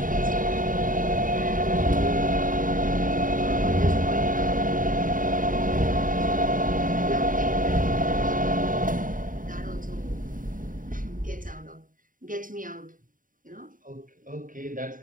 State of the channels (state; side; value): late; left; 0.39 ms